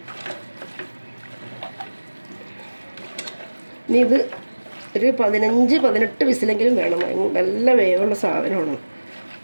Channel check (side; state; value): both; inverted; correlation -1.00